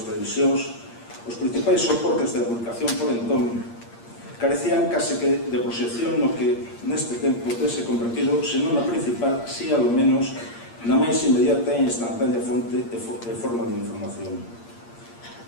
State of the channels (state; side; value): late; right; 8.6 ms